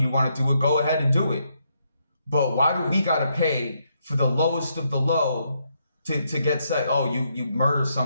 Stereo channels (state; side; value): inverted; both; correlation -0.77